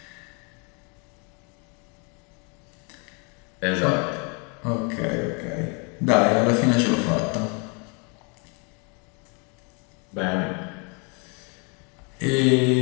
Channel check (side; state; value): right; quieter; 34.3 dB